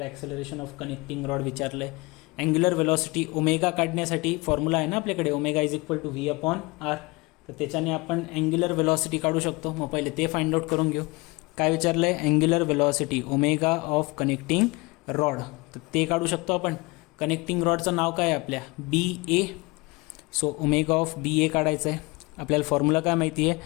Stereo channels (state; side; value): quieter; right; 24.9 dB